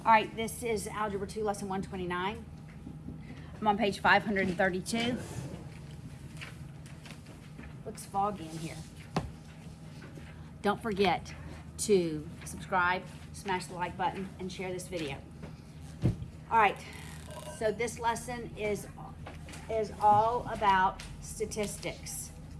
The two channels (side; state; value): both; identical; correlation 1.00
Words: All right, this is Algebra 2, Lesson 129. I'm on page 532. Looks foggy in here. Don't forget to subscribe, smash the like button, and share this video. All right, so this lesson is all about statistics.